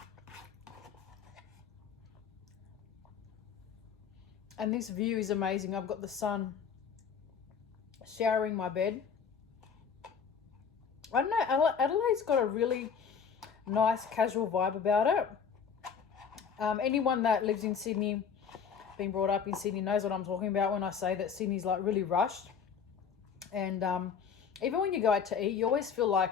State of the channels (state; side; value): quieter; right; 6.8 dB